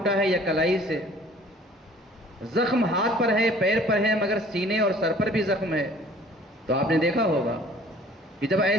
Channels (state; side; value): normal; both; correlation 0.52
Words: ہے یا کلائی سے، زخم ہاتھ پر ہے، پیر پر ہے، مگر سینے اور سر پر بھی زخم ہے، تو آپ نے دیکھا ہوگا کہ جب